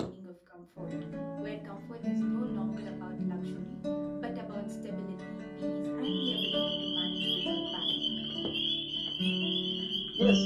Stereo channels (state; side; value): identical; both; correlation 1.00